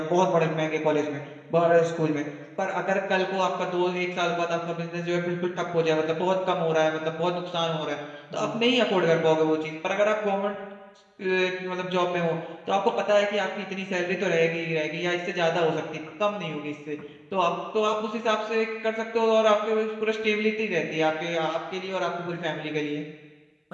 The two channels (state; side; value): identical; both; correlation 1.00